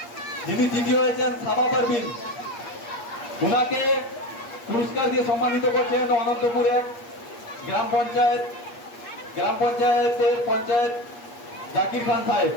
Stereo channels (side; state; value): right; late; 8.4 ms